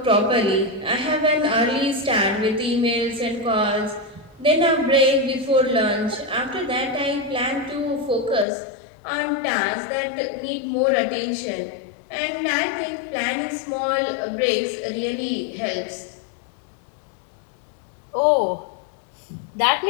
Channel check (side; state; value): right; drops out; at 8.5 s